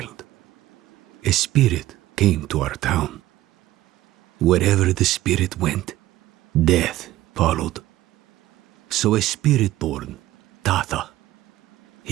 a spirit came to our town. Wherever the spirit went, death followed. So a spirit born, Tatha,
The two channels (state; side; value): quieter; left; 15.3 dB